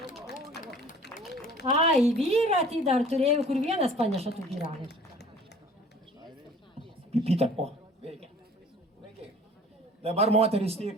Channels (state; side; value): normal; both; correlation 0.49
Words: Ai, vyrą tai dar turėjau, kur vienas paneša tų pyragą. Pipyta, o, veikia. Dabar moteris